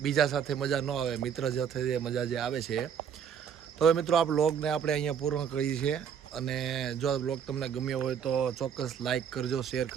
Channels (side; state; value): left; quieter; 7.9 dB